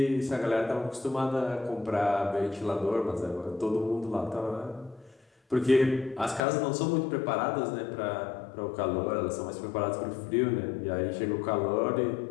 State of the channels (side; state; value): right; drops out; at 6.4 s